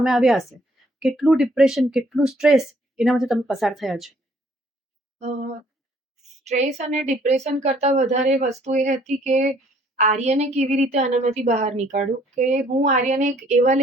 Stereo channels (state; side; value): normal; both; correlation 0.62